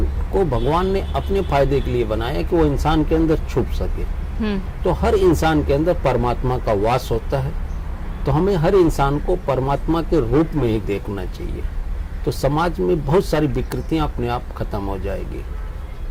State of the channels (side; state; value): both; identical; correlation 1.00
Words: को भगवान ने अपने फायदे के लिए बनाया कि वो इंसान के अंदर छुप सके। तो हर इंसान के अंदर परमात्मा का वास होता है। तो हमें हर इंसान को परमात्मा के रूप में ही देखना चाहिए। तो समाज में बहुत सारी विकृतियां अपने आप खत्म हो जाएगी।